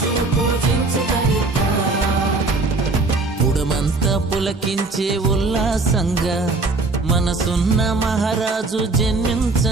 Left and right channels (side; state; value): left; quieter; 3.5 dB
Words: పుడమంతా పులకించే ఉల్లాసంగా మనసున్న మహారాజు